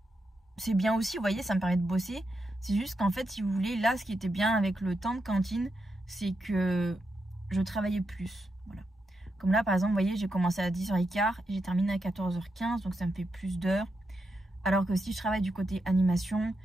c'est bien aussi, vous voyez, ça me permet de bosser. C'est juste qu'en fait, si vous voulez, là, ce qui était bien avec le temps de cantine, c'est que je travaillais plus, voilà. Comme là, par exemple, vous voyez, j'ai commencé à 10h15 et j'ai terminé à 14h15, donc ça me fait plus d'heures. Alors que si je travaille du côté animation,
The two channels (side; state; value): both; normal; correlation 0.84